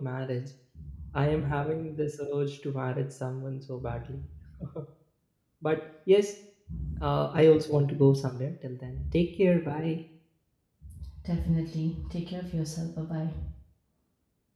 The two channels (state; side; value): identical; both; correlation 1.00